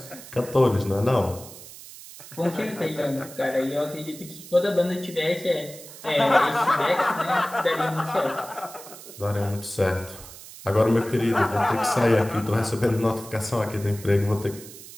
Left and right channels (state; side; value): noise; right; hiss, 16 dB below the sound